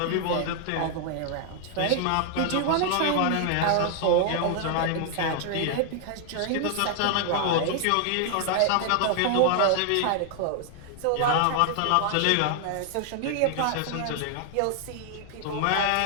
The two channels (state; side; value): different; both; correlation 0.00